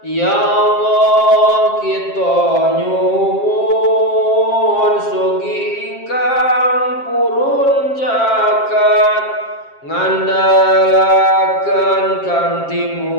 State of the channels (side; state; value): right; late; 7.5 ms